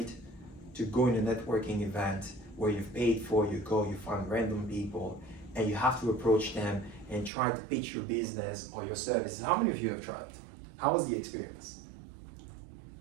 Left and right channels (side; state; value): left; drops out; at 7.3 s